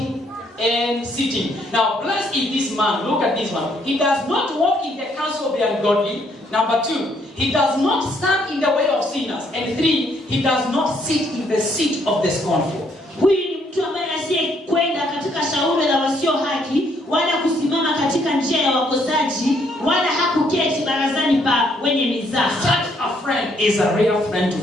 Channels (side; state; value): both; normal; correlation 0.69